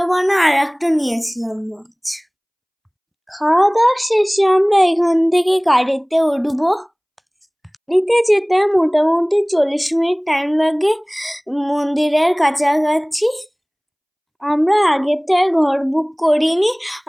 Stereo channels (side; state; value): both; identical; correlation 1.00